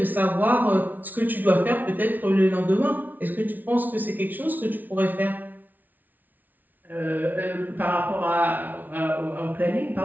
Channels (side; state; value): left; late; 0.082 ms